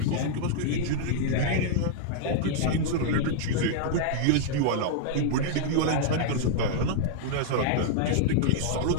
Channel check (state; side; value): different; both; correlation -0.01